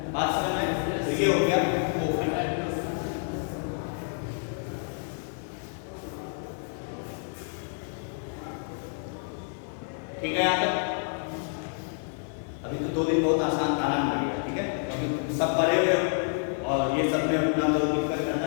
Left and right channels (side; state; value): right; silent; 59 dB below the other